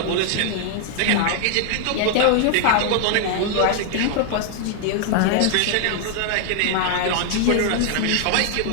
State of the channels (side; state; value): both; different; correlation 0.00